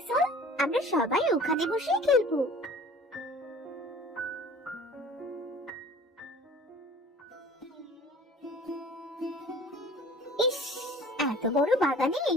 চল, আমরা সবাই ওখানে বসে খেলবো। ইস, এত বড় বাগানে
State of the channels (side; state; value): both; normal; correlation 0.46